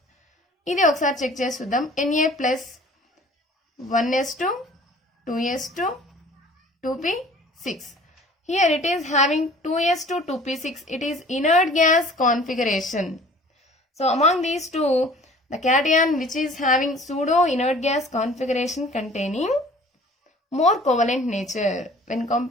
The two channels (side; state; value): both; normal; correlation 0.49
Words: ఇది ఒకసారి చెక్ చేసి చూద్దాం. Na plus 1s2 2s2 2p6. Here it is having 2s2 2p6. It is inert gas configuration. So among these two, the cation which is having pseudo inert gas configuration containing more covalent nature when